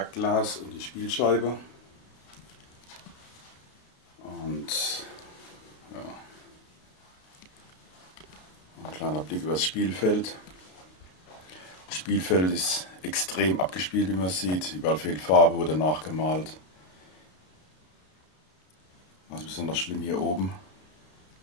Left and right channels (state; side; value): late; right; 33 ms